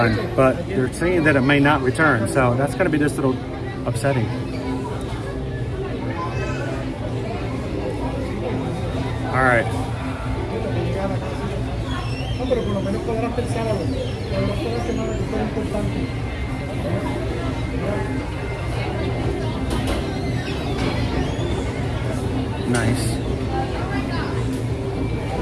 but they're saying that it may not return. So that's going to be just a little upsetting. All right. Nice.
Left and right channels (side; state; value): both; identical; correlation 1.00